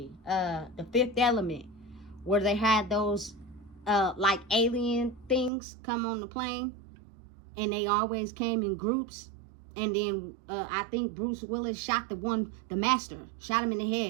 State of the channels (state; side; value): drops out; left; at 5.5 s